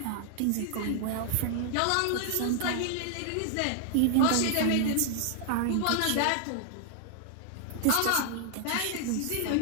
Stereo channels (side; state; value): both; different; correlation 0.00